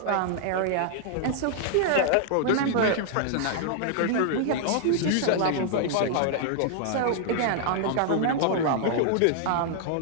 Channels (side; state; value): both; different; correlation -0.01